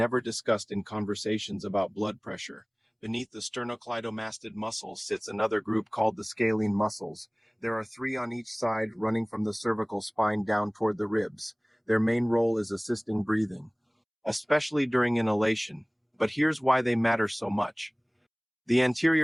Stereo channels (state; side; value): identical; both; correlation 1.00